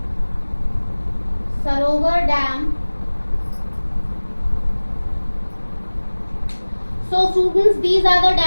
Sarovar Dam. So students, these are the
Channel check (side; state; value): both; inverted; correlation -1.00